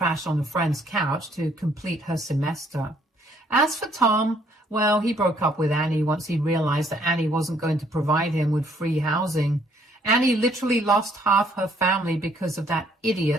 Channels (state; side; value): normal; both; correlation 0.65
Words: on a friend's couch to complete her semester. As for Tom, well, he broke up with Annie once he realized that Annie wasn't going to provide him with free housing. Annie literally lost half her family because of that